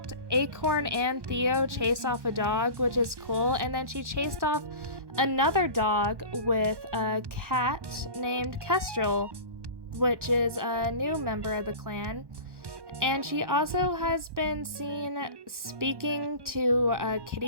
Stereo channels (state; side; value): late; left; 1.1 ms